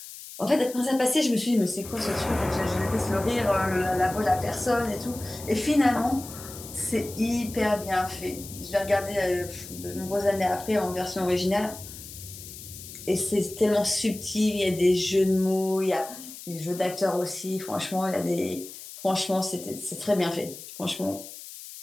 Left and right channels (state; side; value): noise; left; hiss, 14 dB below the sound